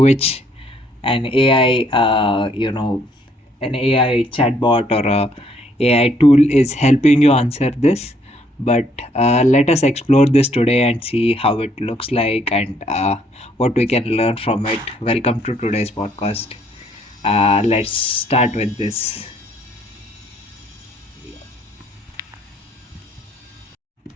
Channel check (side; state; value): both; normal; correlation 0.67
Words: an AI, an AI chatbot or a AI tool is helping you answer this. But let us explore this today and see how it looks like and what we can learn from it. Welcome to today's podcast. Let's start with this.